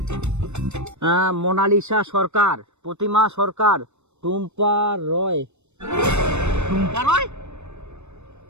মোনালিসা সরকার, প্রতিমা সরকার, টুম্পা রয়। টুম্পা রয়,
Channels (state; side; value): late; left; 0.82 ms